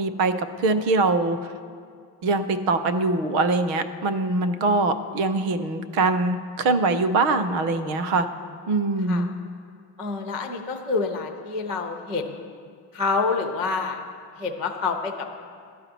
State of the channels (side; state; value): left; late; 6.3 ms